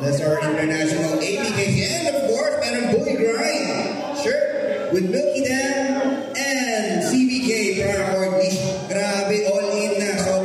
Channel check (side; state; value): both; identical; correlation 1.00